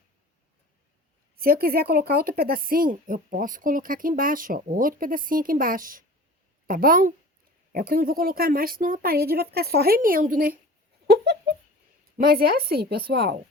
Se eu quiser colocar outro pedacinho, eu posso colocar aqui embaixo, ó. Outro pedacinho aqui embaixo. Tá bom? É o que eu não vou colocar mais, senão a parede vai ficar só remendo, né? Mas é assim, pessoal.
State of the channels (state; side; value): normal; both; correlation 0.40